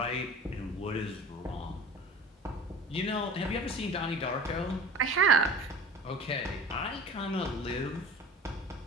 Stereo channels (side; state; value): both; normal; correlation 0.40